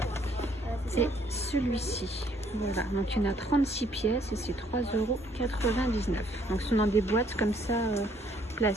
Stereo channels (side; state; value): both; normal; correlation 0.65